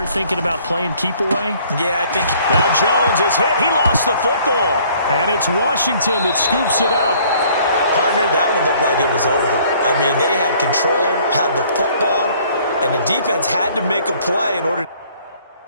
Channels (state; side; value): inverted; both; correlation -0.58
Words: thinking about playing keep away. Yeah, I think. Now Jones is hit. He lost the football. And it's Washington that scoops it up. Partner, that one looked like it was over. I mean, they had control, had the football, and the defense had to make a play in order to